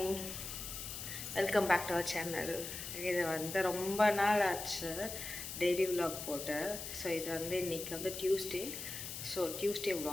Welcome back to our channel. இது வந்து ரொம்ப நாள் ஆச்சு டெய்லி விலாக் போட்டு. ஸோ இது வந்து இன்றைக்கி வந்து டியூஸ்டே. ஸோ டியூஸ்டே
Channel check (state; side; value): noise; left; hiss, 7 dB below the sound